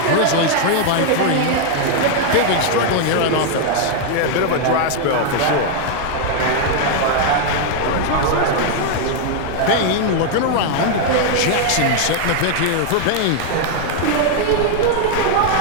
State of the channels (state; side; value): different; both; correlation 0.00